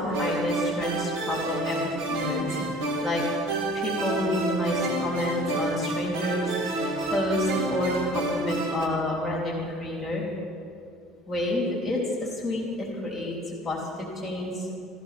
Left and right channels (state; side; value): normal; both; correlation 0.49